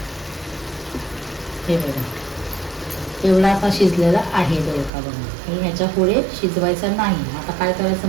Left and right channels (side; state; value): left; drops out; at 4.9 s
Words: हे बघा एवढा आता शिजलेला आहे दोडका. बघा हे ह्याच्या पुढे शिजवायचा नाही. आता काय करायचं